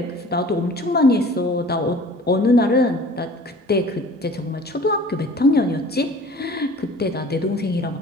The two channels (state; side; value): normal; both; correlation 0.46